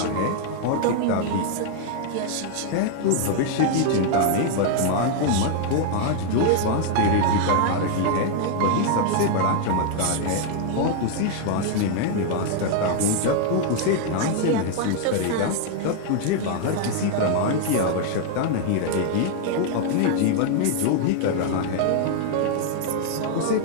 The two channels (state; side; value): different; both; correlation 0.00